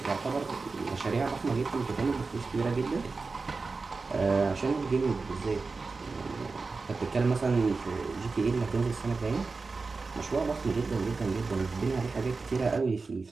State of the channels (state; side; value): quieter; left; 4.1 dB